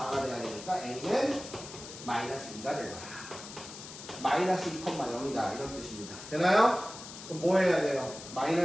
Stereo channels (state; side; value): noise; left; hiss, 13 dB below the sound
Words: 돼야 되니까 A는 마이너스 2가 되더라. 마이너스 2,0이다 이런 뜻입니다. 되나요? 그럼 뭐 해야 돼요?